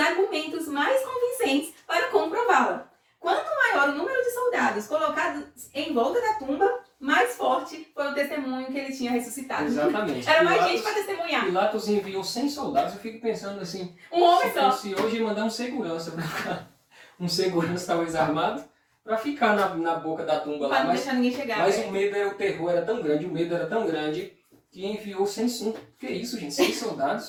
mais convincentes para comprová-la. Quanto maior o número de soldados colocados em volta da tumba, mais forte foi o testemunho que ele tinha ressuscitado. Exatamente. Era mais gente para testemunhar. Pilatos enviou 100 soldados, eu fico pensando assim, um homem só. Se hoje ia mandar um segurança para ficar, um segurança talvez armado, para ficar na boca da tumba lá. Para não deixar ninguém chegar. Mas o medo, o terror era tão grande, o medo era tão grande, que enviou 100, que é isso, gente? 100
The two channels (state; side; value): identical; both; correlation 1.00